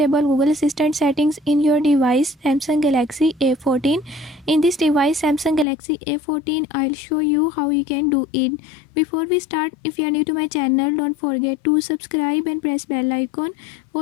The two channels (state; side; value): drops out; right; at 5.7 s